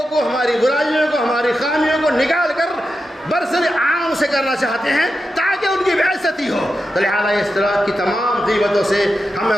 کو، ہماری برائیوں کو، ہماری خامیوں کو نکال کر برسر عام سے کرنا چاہتے ہیں تاکہ ان کی بےعزتی ہو. تو لہٰذا اس طرح کی تمام غیبتوں سے ہمیں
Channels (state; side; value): normal; both; correlation 0.89